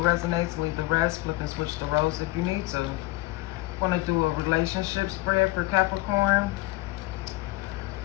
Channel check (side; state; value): right; quieter; 19.8 dB